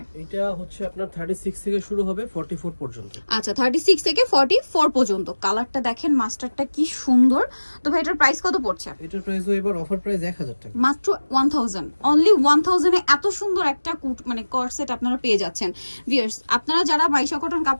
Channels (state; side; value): inverted; both; correlation -1.00